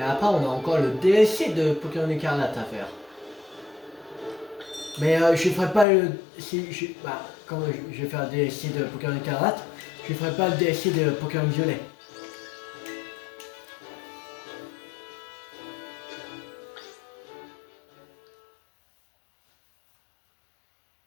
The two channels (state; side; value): drops out; right; at 5.9 s